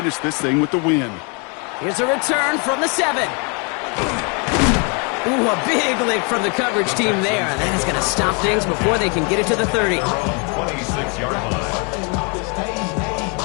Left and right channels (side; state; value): right; quieter; 34.6 dB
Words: this thing with the win. Here's a return from the 7. Ooh, a big lick from the coverage team there. And that is going to stop things before they can get it to the 30. 26-yard line.